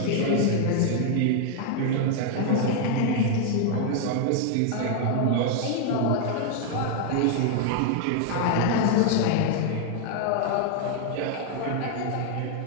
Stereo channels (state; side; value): different; both; correlation 0.00